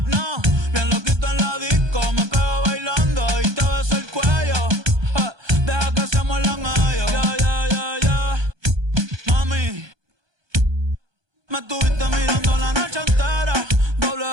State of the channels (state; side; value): late; left; 1.2 ms